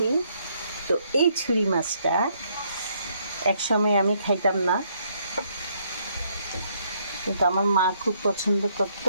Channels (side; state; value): both; inverted; correlation -0.70